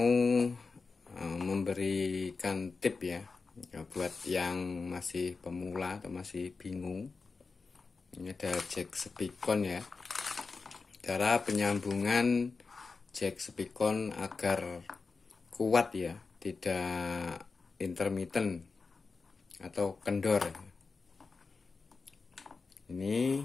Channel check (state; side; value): quieter; right; 4.4 dB